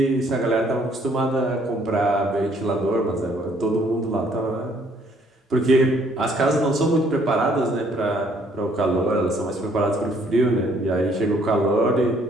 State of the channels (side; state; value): both; normal; correlation 0.64